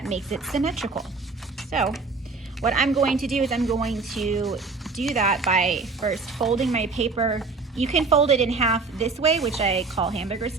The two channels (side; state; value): left; quieter; 4.1 dB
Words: makes it symmetrical. So what I'm going to do is I'm going to do that by first folding my paper. You can fold it in half this way, which I call hamburger